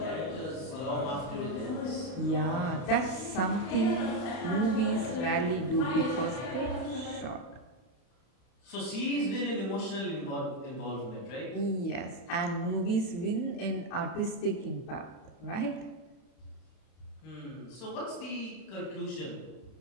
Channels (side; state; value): right; late; 32 ms